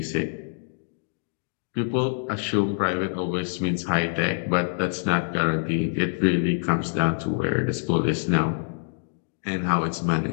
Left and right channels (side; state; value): right; silent; digital silence